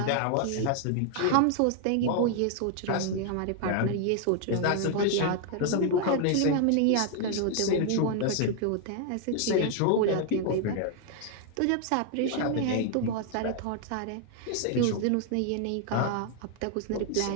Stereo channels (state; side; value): different; both; correlation 0.00